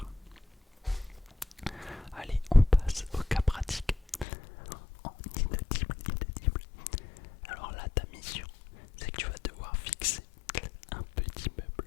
Allez, on passe au cas pratique. En inaudible. Alors là, ta mission, c'est que tu vas devoir fixer un petit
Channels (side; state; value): right; drops out; at 4.2 s